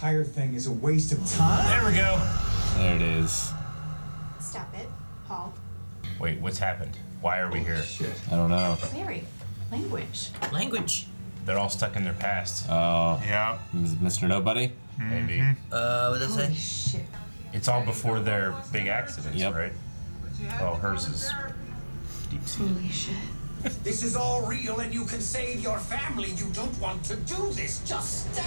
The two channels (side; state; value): both; inverted; correlation -1.00